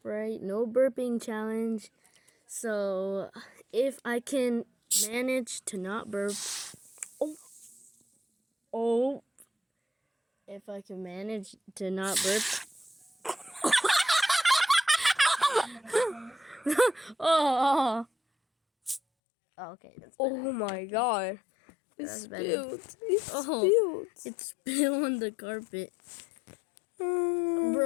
no burping challenge. So, if I can manage to not burp. Oh. If I can manage to not burp. Oh. Okay, that's better. Oh my god. That's Spilled. better. It's spilled. It's spilled on the carpet.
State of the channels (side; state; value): right; drops out; at 19.0 s